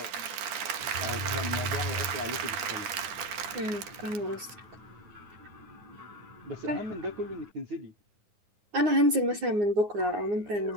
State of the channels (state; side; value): late; left; 10 ms